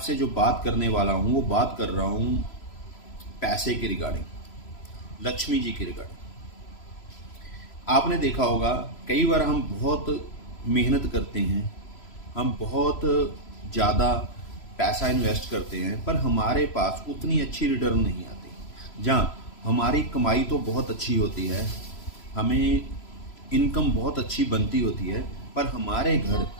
जो बात करने वाला हूँ वो बात कर रहा हूँ पैसे के रिगार्डिंग, लक्ष्मी जी के रिगार्डिंग। आपने देखा होगा कई बार हम बहुत मेहनत करते हैं, हम बहुत ज़्यादा पैसा इन्वेस्ट करते हैं, पर हमारे पास उतनी अच्छी रिटर्न नहीं आती। जहाँ हमारी कमाई तो बहुत अच्छी होती है, हमें इनकम बहुत अच्छी बनती होती है, पर हमारे घर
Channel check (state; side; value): late; right; 3.0 ms